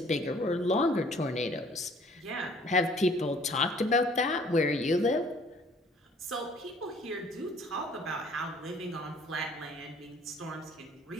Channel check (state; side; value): normal; both; correlation 0.56